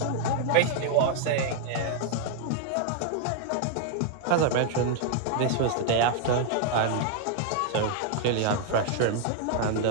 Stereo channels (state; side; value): different; both; correlation 0.00